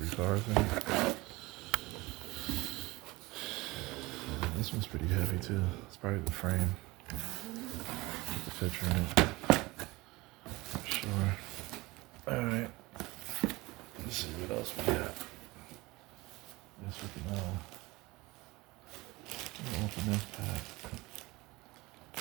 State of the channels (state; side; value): quieter; left; 21.7 dB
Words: 3 cars in it. This one's pretty heavy too. It's probably the frame. The picture in it. For sure. Alright. Let's see what else we got. Guess we can open this pack.